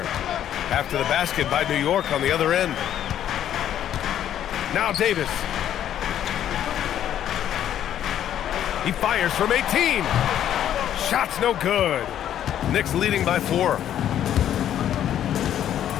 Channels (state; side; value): quieter; right; 10.7 dB